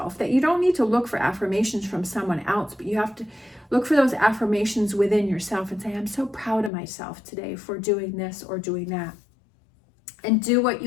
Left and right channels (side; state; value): right; drops out; at 6.7 s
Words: that you don't need to look for affirmations from someone else, but you have to look for those affirmations within yourself and say, I'm so proud of myself today for doing this or doing that. And do what